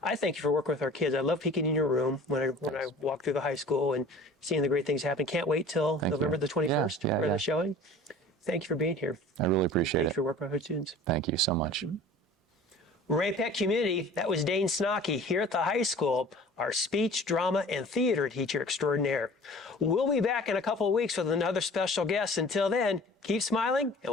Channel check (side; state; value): both; normal; correlation 0.44